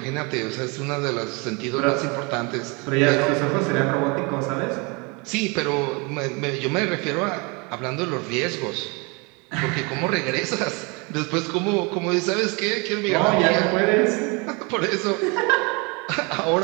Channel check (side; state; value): left; quieter; 29.7 dB